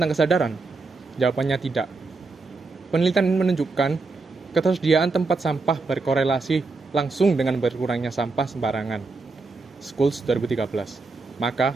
kesadaran? Jawabannya tidak. Penelitian menunjukkan ketersediaan tempat sampah berkorelasi langsung dengan berkurangnya sampah sembarangan. Schools 2013. Maka,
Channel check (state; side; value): quieter; left; 3.8 dB